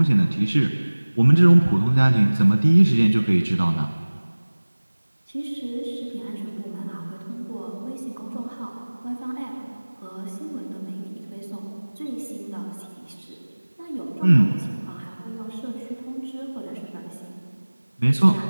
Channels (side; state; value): both; inverted; correlation -1.00